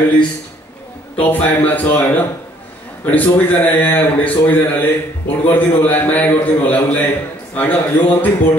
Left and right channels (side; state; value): both; normal; correlation 0.62